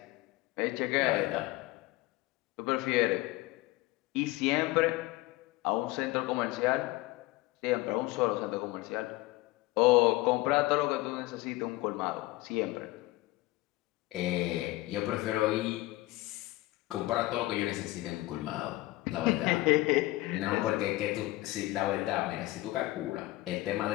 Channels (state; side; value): quieter; right; 19.1 dB